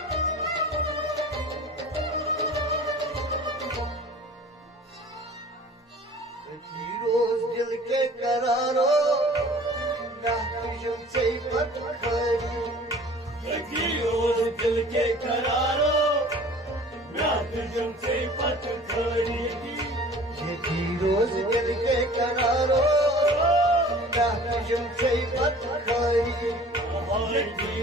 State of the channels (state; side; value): normal; both; correlation 0.46